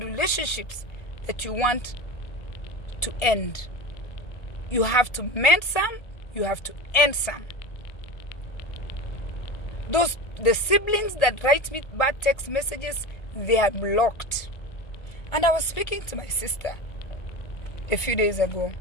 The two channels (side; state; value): right; late; 1.7 ms